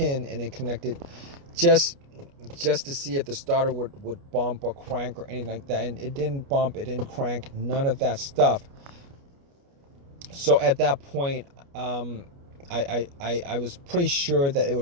and then connected just to see if the starter would bump or crank or anything like that. And it didn't bump, it didn't crank, none of that stuff. So at that point, I was pretty sure that it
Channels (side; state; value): left; late; 29 ms